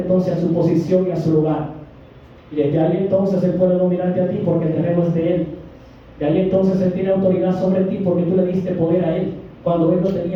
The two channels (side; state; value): both; identical; correlation 1.00